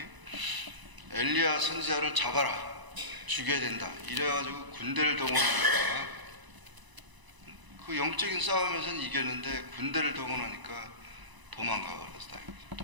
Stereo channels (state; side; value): late; left; 1.0 ms